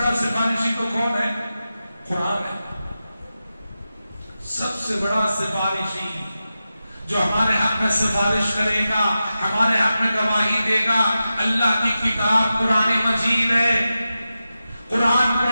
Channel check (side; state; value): both; inverted; correlation -0.92